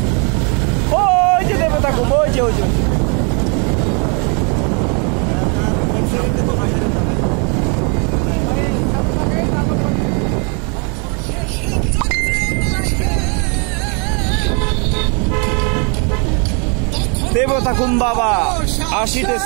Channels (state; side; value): quieter; left; 36.2 dB